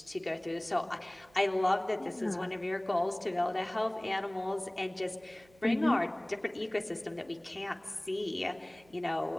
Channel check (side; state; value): right; noise; hum, 28 dB below the sound